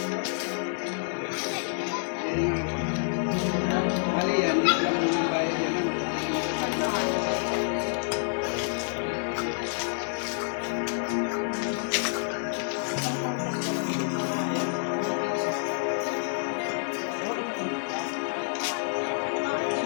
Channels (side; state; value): right; silent; digital silence